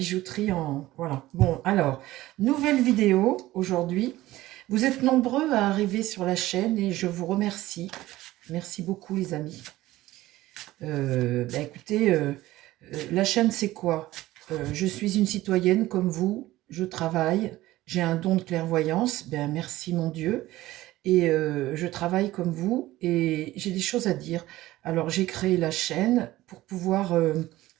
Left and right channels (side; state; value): left; quieter; 16.7 dB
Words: en... Voilà, bon, alors, nouvelle vidéo aujourd'hui. Vous êtes nombreux à arriver sur la chaîne et je vous remercie. Merci beaucoup les amis. Écoutez, la chaîne c'est quoi? Je suis une citoyenne comme vous, je travaille, j'ai un don de clairvoyance, ben merci mon Dieu, et je travaille comme vous et j'ai des choses à dire. Alors j'ai créé la chaîne pour pouvoir